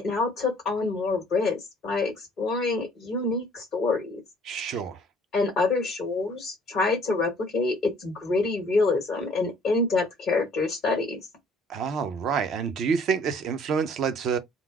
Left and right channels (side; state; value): both; normal; correlation 0.57